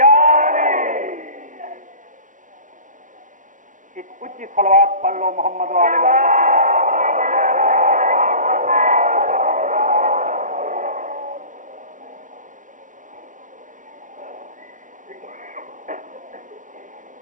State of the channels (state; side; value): late; left; 0.37 ms